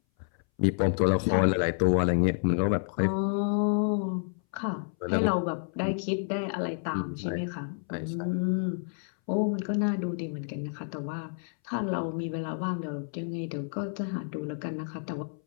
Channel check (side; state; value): right; silent; 58 dB below the other